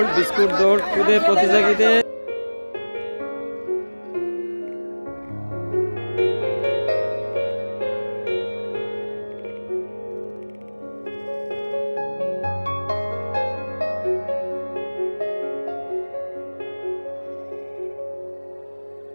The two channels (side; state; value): both; inverted; correlation -1.00